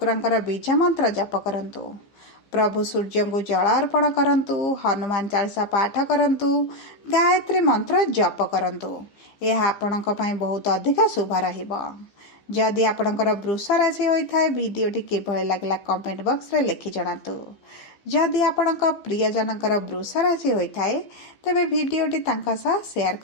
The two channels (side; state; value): right; late; 15 ms